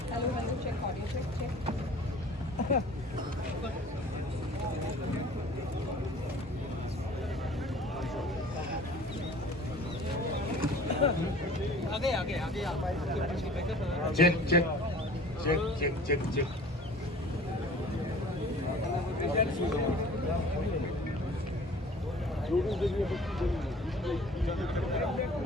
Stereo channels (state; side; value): normal; both; correlation 0.47